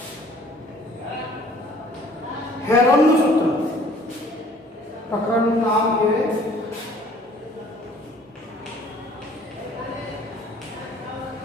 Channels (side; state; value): both; normal; correlation 0.55